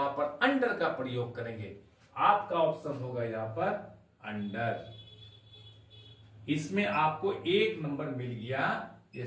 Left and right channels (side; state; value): both; identical; correlation 1.00